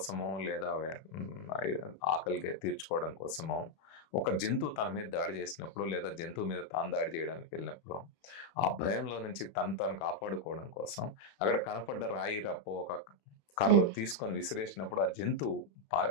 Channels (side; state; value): right; late; 31 ms